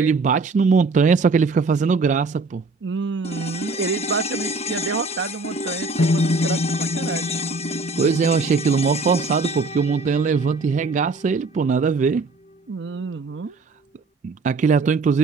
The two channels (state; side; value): quieter; left; 3.7 dB